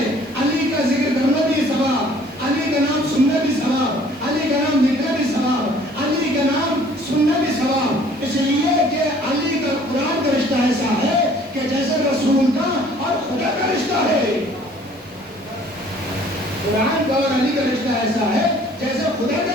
علی کا ذکر کرنا بھی ثواب، علی کا نام سننا بھی ثواب، علی کا نام لکھنا بھی ثواب، علی کا نام سننا بھی ثواب۔ اس لیے کہ علی کا قرآن کا رشتہ ایسا ہے کہ جیسے رسول کا اور خدا کا رشتہ ہے، قرآن کا اور علی کا رشتہ ایسا ہے جیسے خدا کا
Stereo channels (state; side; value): normal; both; correlation 0.55